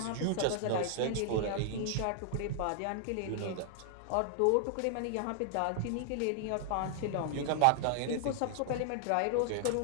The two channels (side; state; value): both; different; correlation -0.01